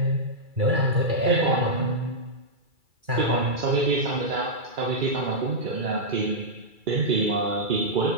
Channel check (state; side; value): late; left; 2.3 ms